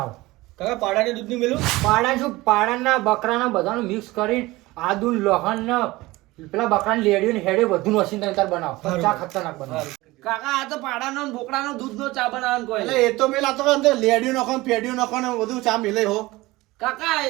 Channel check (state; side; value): quieter; left; 20.0 dB